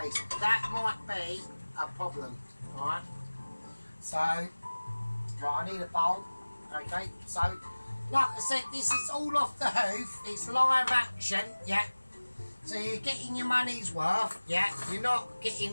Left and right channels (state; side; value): inverted; both; correlation -1.00